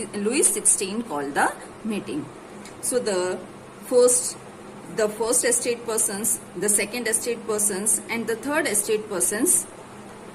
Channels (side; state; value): both; identical; correlation 1.00